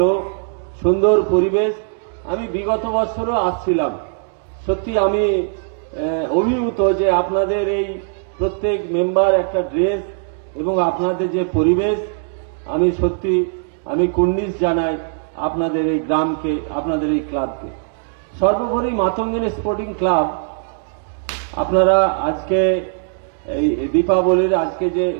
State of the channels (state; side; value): silent; left; digital silence